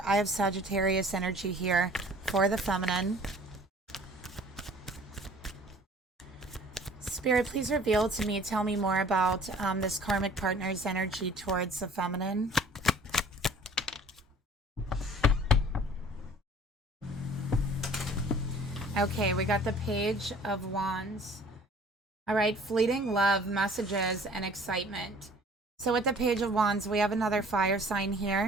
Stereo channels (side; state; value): both; normal; correlation 0.51